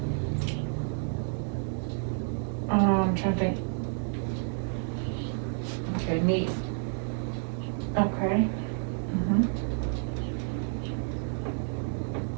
I'm trying to think. Okay, knee. Okay. Mm-hmm.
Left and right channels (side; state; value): left; silent; 55 dB below the other